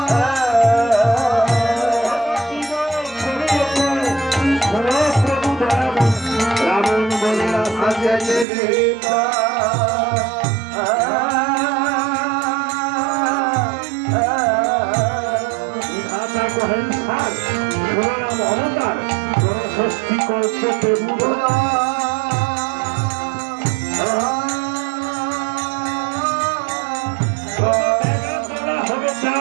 রাবণ বলে অবতার ষষ্ঠী কল্পে হবে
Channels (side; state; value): left; drops out; at 8.5 s